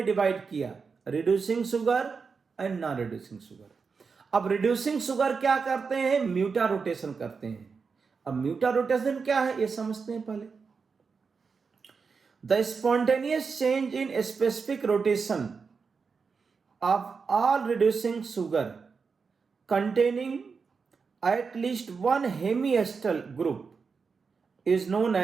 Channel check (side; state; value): left; quieter; 5.2 dB